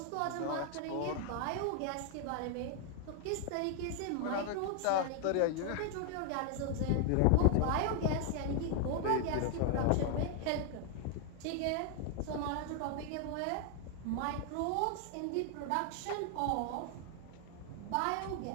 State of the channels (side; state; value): both; different; correlation 0.00